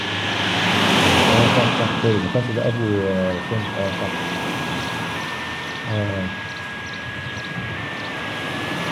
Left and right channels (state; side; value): identical; both; correlation 1.00